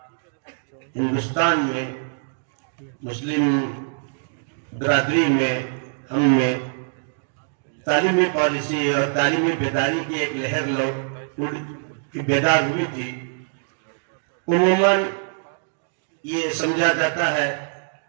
ہندوستان میں مسلم برادری میں ہم میں تعلیمی پالیسی اور تعلیمی بیداری کی ایک لہر بیدار ہوئی تھی۔ عموماً یہ سمجھا جاتا ہے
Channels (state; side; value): silent; left; digital silence